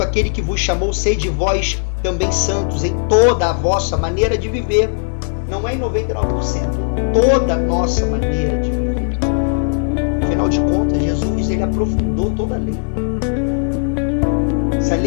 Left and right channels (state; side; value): silent; right; digital silence